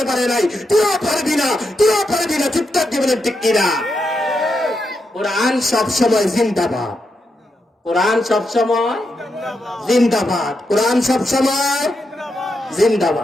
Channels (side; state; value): both; normal; correlation 0.84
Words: পারে নাই। তুইও পারবি না, তুইও পারবি না। চিৎকার দিবেন ঠিক কিনা? কোরআন সব সময় জিন্দাবাদ, কোরআন সব সময় জিন্দাবাদ, কোরআন সব সময়